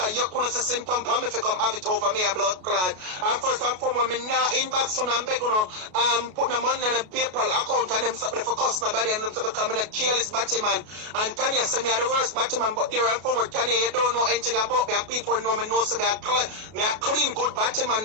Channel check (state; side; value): late; left; 33 ms